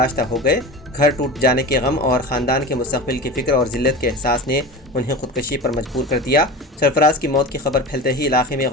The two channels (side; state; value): both; normal; correlation 0.31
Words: हो गए। घर टूट जाने के गम और ख़ानदान के मुस्तक़बिल की फ़िक्र और ज़िल्लत के एहसास ने उन्हें खुदकशी पर मजबूर कर दिया। सरफराज की मौत की खबर फैलते ही इलाके में